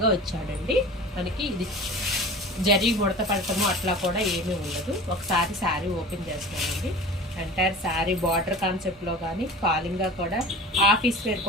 వచ్చాడండి. మనకి ఇది జరీ ముడత పడటము అట్లా కూడా ఏమీ ఉండదు. ఒకసారి శారీ ఓపెన్ చేస్తామండి. ఎంటైర్ శారీ బార్డర్ కాన్సెప్ట్లో కానీ ఫాలింగ్గా కూడా ఆఫీస్ వేర్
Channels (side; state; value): both; normal; correlation 0.38